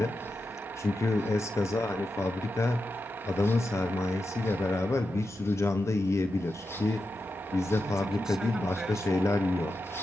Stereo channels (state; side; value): normal; both; correlation 0.89